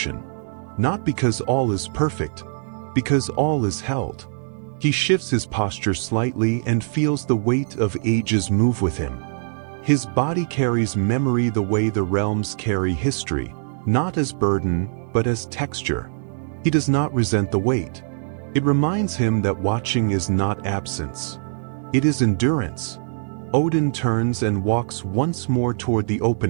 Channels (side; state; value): left; silent; digital silence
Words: Not because all is perfect, because all is held. He shifts his posture slightly and feels the weight of ages move with him. His body carries memory the way the realms carry history, not as burden, but as texture. He does not resent the weight. It reminds him that watching is not absence. It is endurance. Odin turns and walks once more toward the